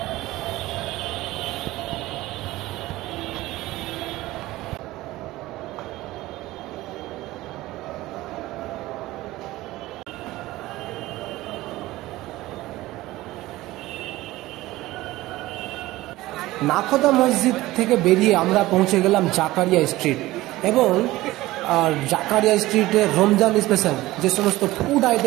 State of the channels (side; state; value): left; quieter; 17.7 dB